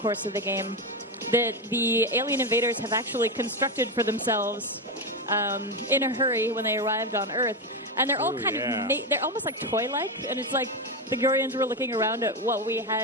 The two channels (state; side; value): normal; both; correlation 0.12